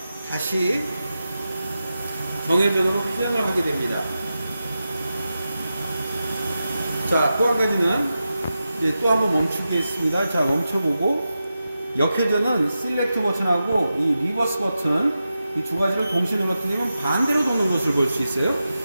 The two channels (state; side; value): inverted; both; correlation -0.91